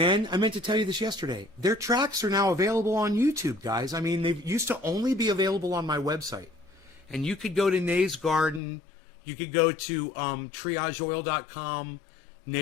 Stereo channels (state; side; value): drops out; right; at 8.6 s